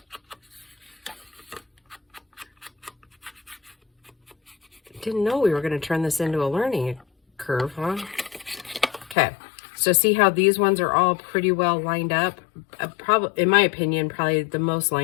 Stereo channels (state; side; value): drops out; right; at 9.2 s